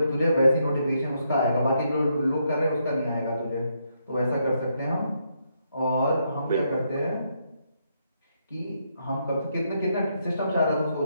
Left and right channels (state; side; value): inverted; both; correlation -0.77